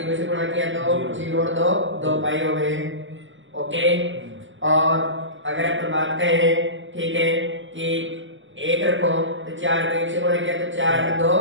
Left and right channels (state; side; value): late; left; 0.56 ms